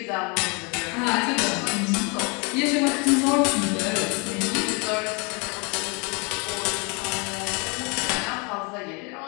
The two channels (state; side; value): quieter; right; 31.5 dB